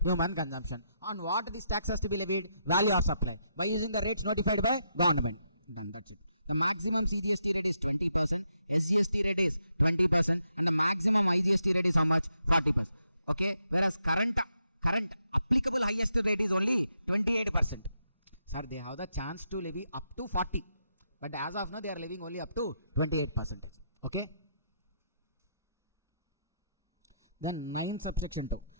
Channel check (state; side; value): inverted; both; correlation -0.80